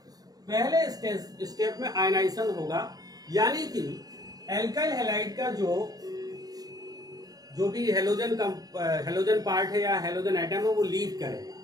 पहले स्टेप में आयनाइजेशन होगा, यानी कि एल्काइल हैलाइड का जो भी हेलोजन पार्ट है या हेलोजन एटम है वो लीव करेगा,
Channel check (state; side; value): late; left; 0.18 ms